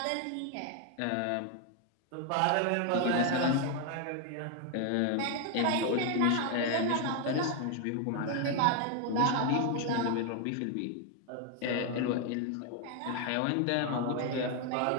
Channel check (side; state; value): both; different; correlation 0.01